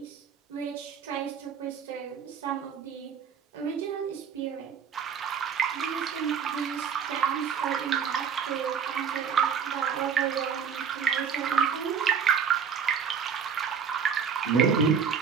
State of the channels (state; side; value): quieter; left; 7.0 dB